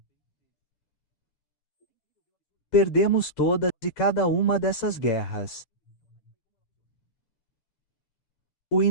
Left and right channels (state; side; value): late; right; 9.0 ms